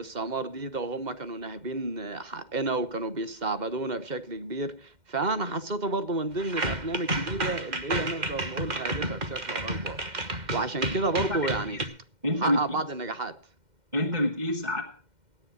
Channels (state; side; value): late; left; 2.1 ms